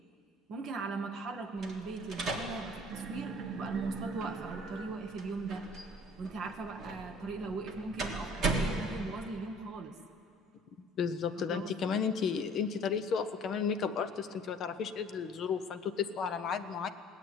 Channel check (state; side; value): normal; both; correlation 0.52